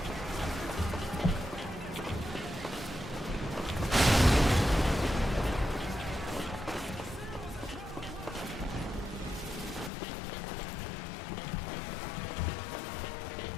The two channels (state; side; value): drops out; right; at 9.9 s